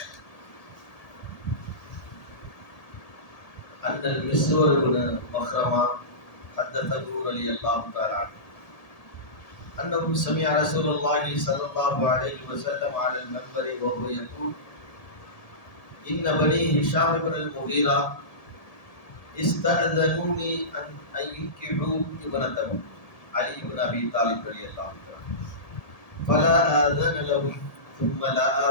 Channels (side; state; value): right; late; 1.7 ms